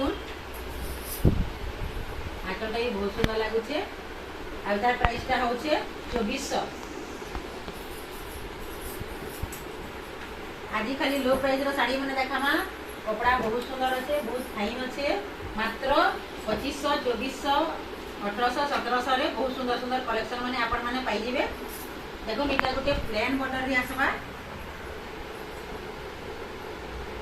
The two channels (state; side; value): identical; both; correlation 1.00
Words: आंचलटा भी बहुत सुंदर लगुचे। आ तार प्राइस टा होचे 2400। आज खाली लो प्राइस रो साड़ी माने देखामा। कपड़ा बहुत सुंदर अच्छे बहुत फाइन अच्छे। मात्र 2500 2400 1800 1700 रे बहुत सुंदर सुंदर कलेक्शन माने आपण माने पाई जिवे। देखो मीटा गुटे प्लेन बॉर्डर रे आसबा।